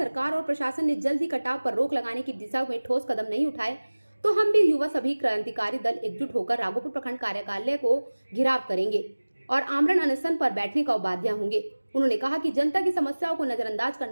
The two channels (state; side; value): inverted; both; correlation -1.00